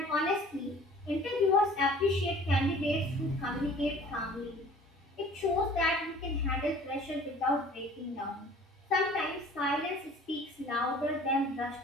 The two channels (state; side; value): normal; both; correlation 0.49